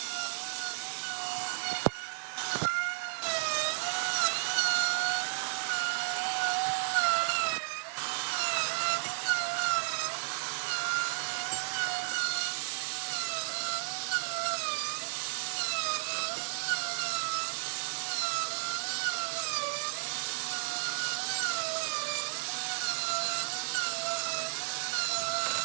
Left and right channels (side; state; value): left; silent; digital silence